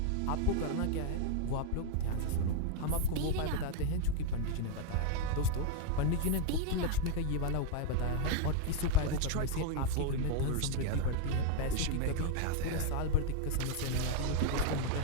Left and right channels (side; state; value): both; different; correlation 0.00